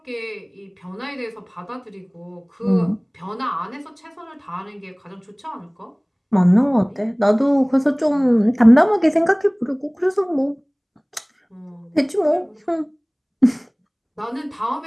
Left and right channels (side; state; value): both; identical; correlation 1.00